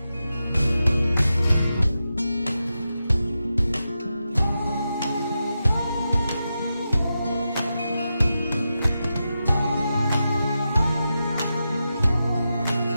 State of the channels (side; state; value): both; inverted; correlation -0.89